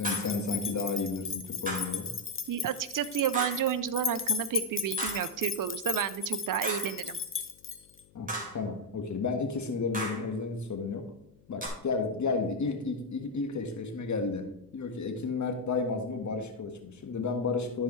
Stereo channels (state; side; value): noise; left; hum, 28 dB below the sound